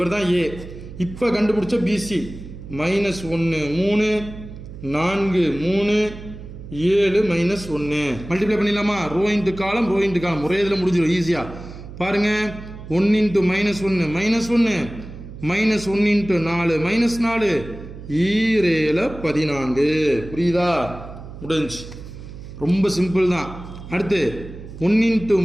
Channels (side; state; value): right; noise; hum, 13 dB below the sound